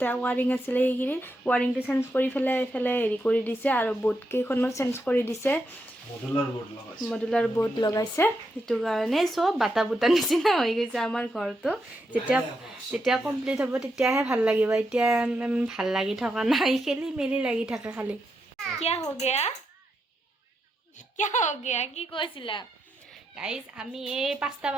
ৱাৰিং আছিলে সেইখিনিত ৱাৰিংটো চেঞ্জ কৰি পেলাই এইফালে হেৰি কৰি দিছে আৰু বোৰ্ড কেইখনো চেঞ্জ কৰি দিছে মডুলাৰ বোৰ্ড লগাইছে সেইটো কাৰণে চব বাটা বুটা নিচিনা হৈ গৈছে আমাৰ ঘৰটো যেতিয়া কমপ্লিট হ'ব তেতিয়াহে ভাল লাগিব এতিয়া ভাল লাগি থকা নাই খেলি মেলি লাগি থাকে খালি কিয় হৈ গয়া কি কৈছিলা গাইজ আমি এই 5টা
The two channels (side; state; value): both; normal; correlation 0.83